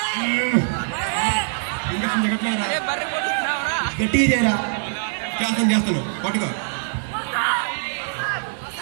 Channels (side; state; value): left; silent; digital silence